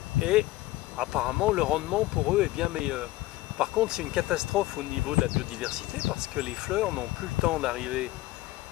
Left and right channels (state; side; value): quieter; right; 17.9 dB